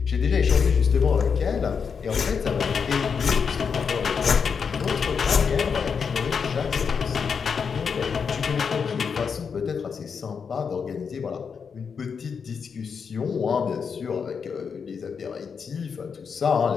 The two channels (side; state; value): right; quieter; 6.1 dB